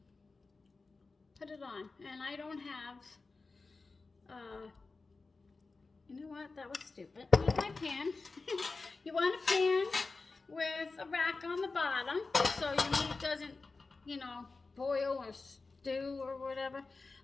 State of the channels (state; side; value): quieter; right; 3.9 dB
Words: put it on. And I don't have. You know what? That was stupid. Here's my pan. You want a pan with a rack on the bottom so your meat doesn't, boil or stew or whatever.